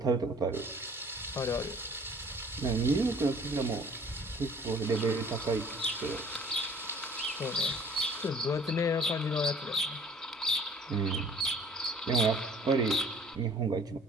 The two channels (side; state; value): both; normal; correlation 0.52